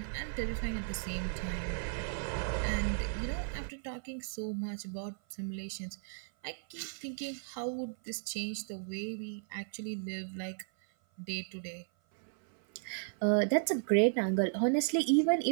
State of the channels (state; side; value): silent; left; 54 dB below the other